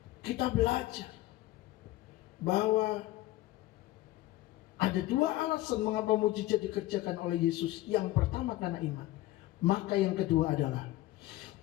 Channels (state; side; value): quieter; right; 16.6 dB